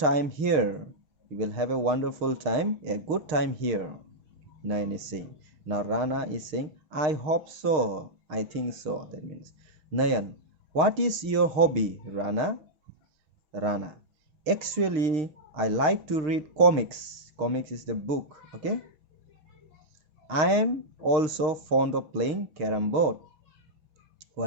here. You will have a wonderful time, a good time here. Nayan is saying. Now Rana is saying, I hope so. I think so. That means Nayan, what is your hobby, Rana? Rana, actually, I like to read comics. Comics is the book. Okay. I am also fond of playing carom board.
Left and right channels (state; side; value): late; left; 6.5 ms